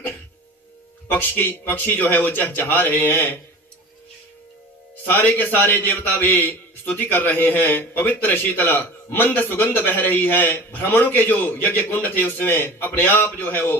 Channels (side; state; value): both; normal; correlation 0.37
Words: पक्षी जो है वो चहचहा रहे हैं। सारे के सारे देवता भी स्तुति कर रहे हैं। पवित्र शीतल मंद सुगंध बह रही है। ब्राह्मणों के जो यज्ञ कुंड थे उसमें अपने आप जो है वो